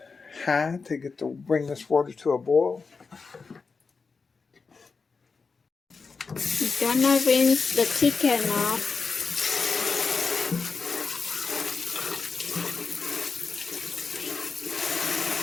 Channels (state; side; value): quieter; right; 4.7 dB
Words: high to bring this water to a boil. We're gonna rinse the chicken off.